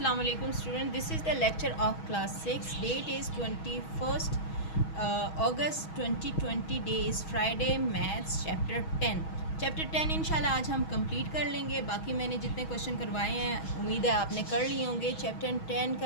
alaikum student. This is the lecture of class 6. Date is 21st August 2020. Day is Friday. Maths chapter 10. Chapter 10 इंशाल्लाह आज हम complete कर लेंगे. बाकी मैंने जितने क्वेश्चन करवाए हैं उम्मीद है आपने कर लिए होंगे. चैप्टर 10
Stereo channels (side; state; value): right; late; 6.3 ms